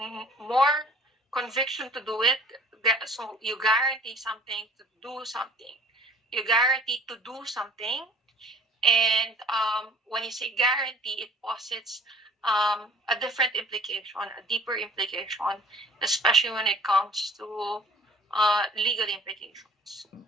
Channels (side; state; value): both; normal; correlation 0.51